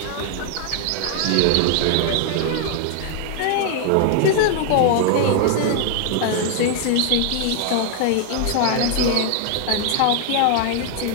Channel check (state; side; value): different; both; correlation 0.00